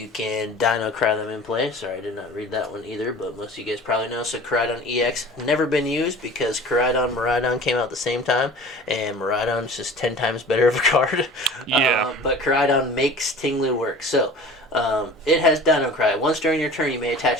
can Dino Cry them in play. Sorry, I did not read that one either, but most of you guys probably know. So Koraidon EX, never been used because Koraidon, Miraidon came out at the same time, and Miraidon's just 10 times better of a card. Yeah. But Koraidon makes Ting-Lu work. So it has Dino Cry. Once during your turn, you may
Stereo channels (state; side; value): normal; both; correlation 0.42